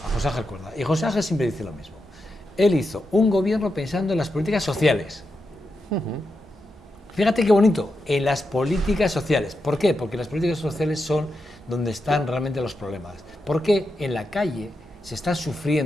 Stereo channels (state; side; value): normal; both; correlation 0.87